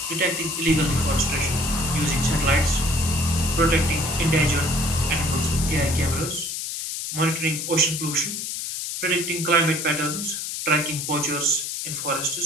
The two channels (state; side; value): noise; left; hiss, 4 dB below the sound